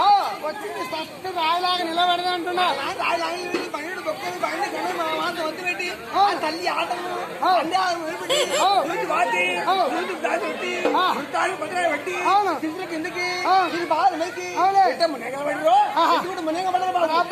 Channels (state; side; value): identical; both; correlation 1.00